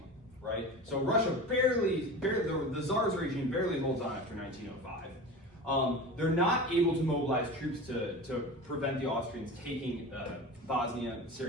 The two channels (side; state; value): both; normal; correlation 0.31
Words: right? So Russia barely the Tsar's regime barely holds on after 1905. They're not able to mobilize troops to prevent the Austrians taking Bosnia,